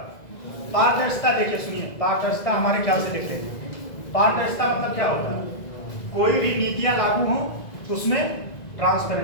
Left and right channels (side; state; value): right; late; 2.0 ms